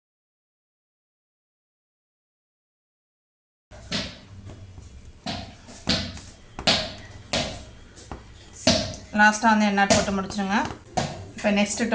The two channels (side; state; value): both; identical; correlation 1.00